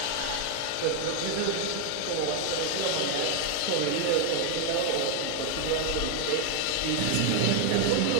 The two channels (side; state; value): both; different; correlation 0.00